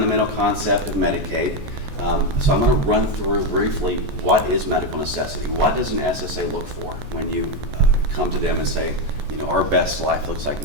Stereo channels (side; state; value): left; late; 14 ms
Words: concept of Medicaid. So I'm going to run through briefly what is medical necessity. What does an SSA look for when you come to them and say, you know, our best life looks like